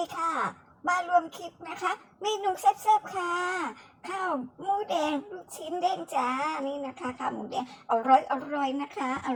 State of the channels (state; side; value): identical; both; correlation 1.00